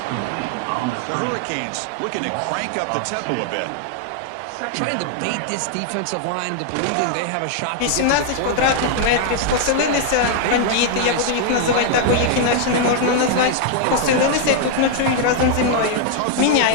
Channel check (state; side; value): different; both; correlation 0.00